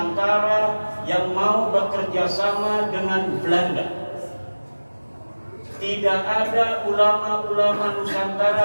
yang mau bekerja sama dengan Belanda. Tidak ada ulama-ulama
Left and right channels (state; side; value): inverted; both; correlation -1.00